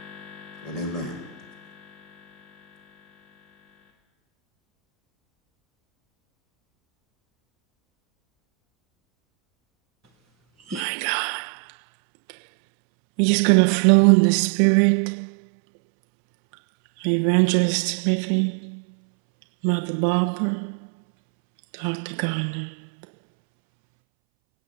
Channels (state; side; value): drops out; left; at 10.8 s